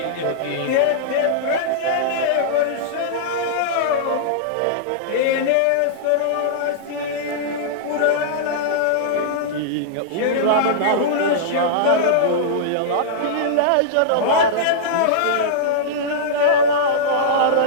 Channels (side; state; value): both; different; correlation -0.03